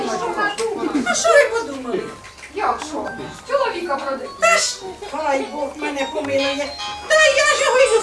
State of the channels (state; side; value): identical; both; correlation 1.00